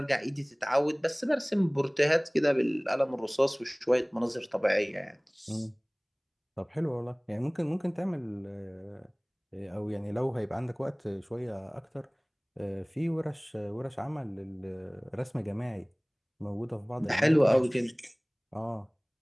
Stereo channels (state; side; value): identical; both; correlation 1.00